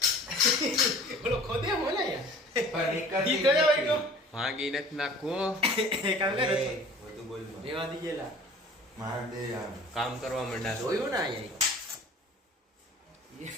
બોલો ખોદે બોલે યાર પણ એક દી કયો હોય ગયો ભાગી નથી નાખો કામ કરે બધું બોલમાં રેવા દી ગયેલા માર દે આમ કામ કરવા માંડ્યા જોયું ને અહીંયા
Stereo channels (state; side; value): normal; both; correlation 0.46